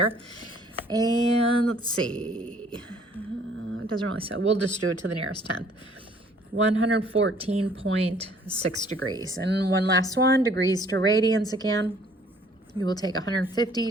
And let's see, it doesn't really say, we'll just do it to the nearest tenth. 114.6 degrees. And one last one, degrees to radians again. You will take 150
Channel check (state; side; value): normal; both; correlation 0.58